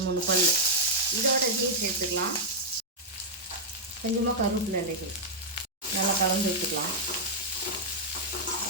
பல் இதோட இதையும் சேர்த்துக்கலாம். கொஞ்சமாக கருவேப்பிலை இலைகள் நல்லா கலந்து விட்டுக்கலாம்.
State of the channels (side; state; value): both; normal; correlation -0.05